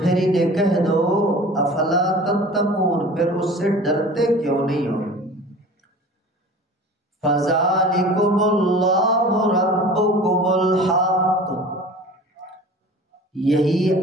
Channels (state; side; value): normal; both; correlation 0.41